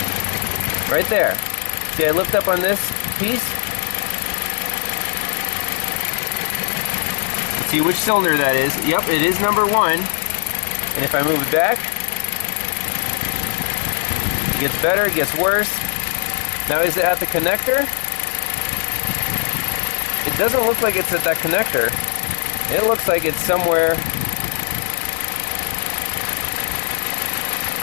right there, see I lift up on this piece? See which cylinder that is. Yep, it is number 1. And if I move it back, it gets better, it gets worse. Now is it at the connector? It doesn't look like it's at that connector. It looks like it's somewhere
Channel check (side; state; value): right; silent; 66 dB below the other